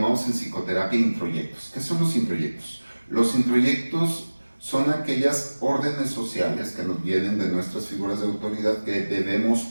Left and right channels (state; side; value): inverted; both; correlation -1.00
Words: en psicoterapia introyectos. ¿Qué son los introyectos? Los introyectos son aquellas órdenes sociales que nos vienen de nuestras figuras de autoridad que debemos